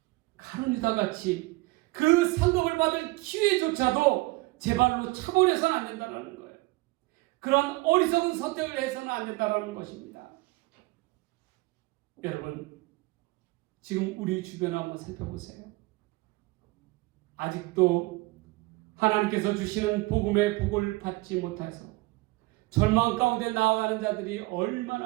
가룟유다 같이 그 상급을 받을 기회조차도 제 발로 차버려서는 안 된다는 거예요. 그런 어리석은 선택을 해서는 안 된다는 것입니다. 여러분, 지금 우리 주변을 한번 살펴보세요. 아직도 하나님께서 주시는 복음의 복을 받지 못해서 절망 가운데 나아가는 자들이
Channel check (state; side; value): quieter; left; 22.4 dB